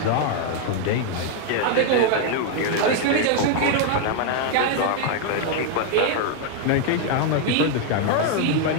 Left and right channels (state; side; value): different; both; correlation 0.00